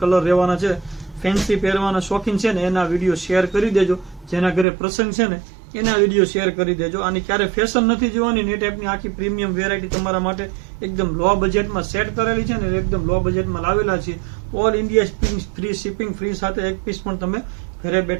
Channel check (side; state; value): left; drops out; at 4.7 s